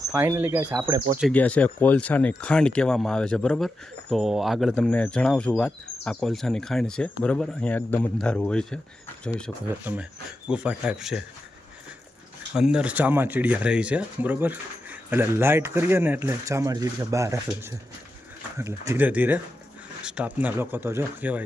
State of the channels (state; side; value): normal; both; correlation 0.89